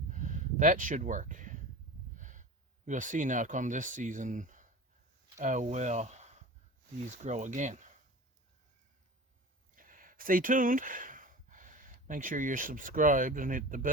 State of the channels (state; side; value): normal; both; correlation 0.35